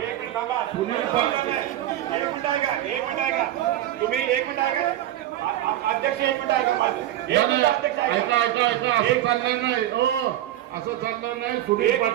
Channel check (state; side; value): quieter; left; 13.3 dB